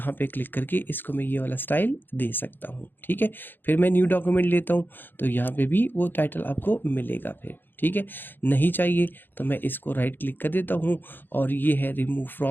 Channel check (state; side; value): late; right; 0.095 ms